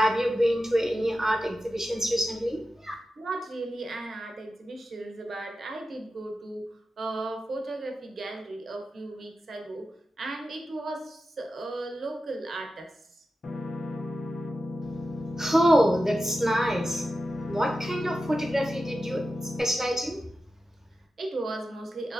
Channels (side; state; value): both; normal; correlation 0.92